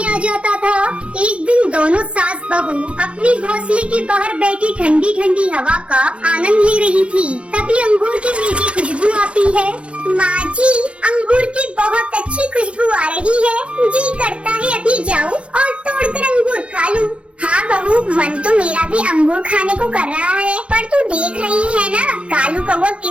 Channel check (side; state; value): left; late; 0.060 ms